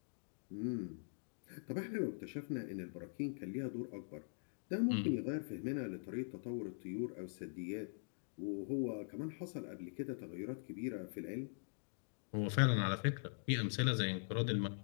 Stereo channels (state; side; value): silent; right; digital silence